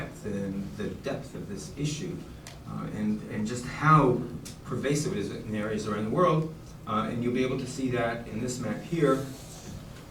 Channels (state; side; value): identical; both; correlation 1.00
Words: and the depth of this issue, and just how pervasive it is in areas around the world. And you'll be able to see that in this map here.